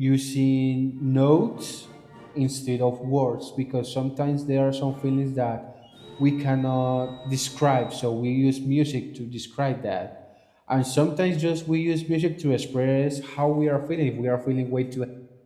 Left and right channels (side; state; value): both; identical; correlation 1.00